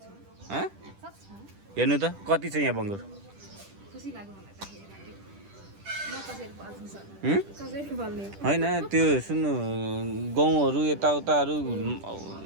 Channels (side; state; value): left; late; 10 ms